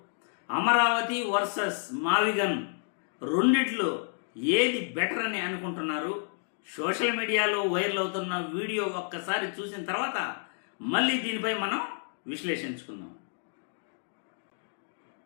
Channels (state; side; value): silent; right; 57 dB below the other